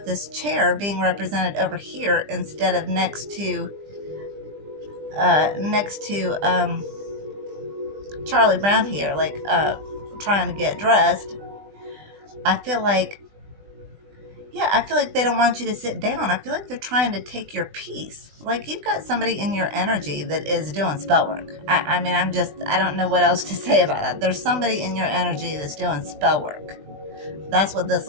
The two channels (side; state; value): left; late; 20 ms